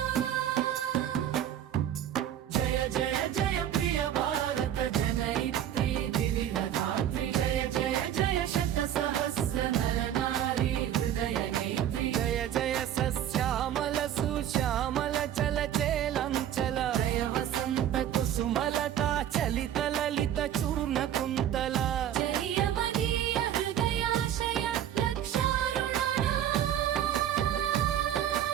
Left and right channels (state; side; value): quieter; left; 10.7 dB